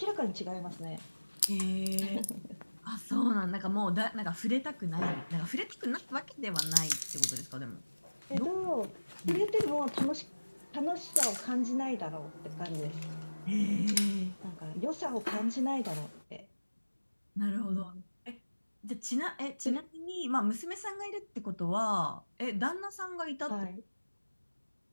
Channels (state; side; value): inverted; both; correlation -1.00